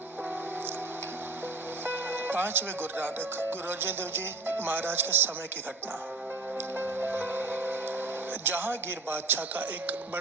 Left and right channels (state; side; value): quieter; left; 3.4 dB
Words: 5वें गुरु नानक गुरु अर्जन देव जी महाराज के समय की घटना। जहांगीर बादशाह का एक